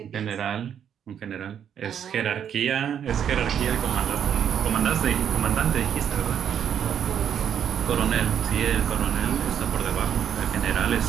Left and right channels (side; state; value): left; quieter; 8.8 dB